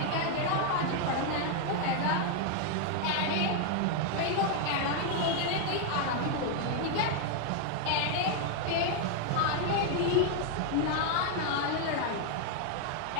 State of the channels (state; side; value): different; both; correlation 0.00